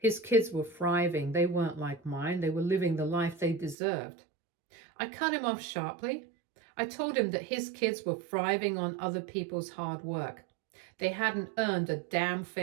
kids were thriving. They weren't like mine. They were living the life they deserved. I cut him off sharply. I told him that his kids were thriving on other people's hard work. They hadn't earned a damn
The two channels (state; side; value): drops out; left; at 3.8 s